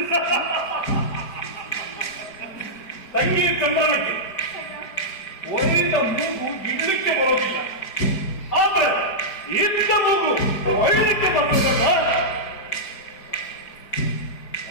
ತಂಗಿ ಚಂದ್ರನಕ್ಕೆ ಒಯ್ದ ಮೂಗು ಇಡ್ಲಿಕ್ಕೆ ಬರೋದಿಲ್ಲ, ಆದ್ರೆ ಇದ್ದ ಮೂಗು ಒಯ್ಲಿಕ್ಕೆ ಬರೋದಲ್ಲ.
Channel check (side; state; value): right; late; 4.7 ms